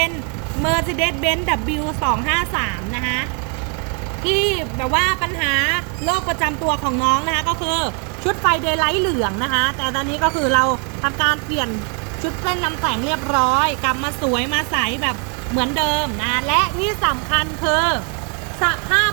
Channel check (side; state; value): left; quieter; 37.5 dB